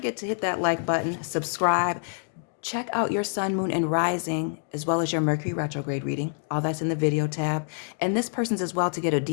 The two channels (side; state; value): right; silent; digital silence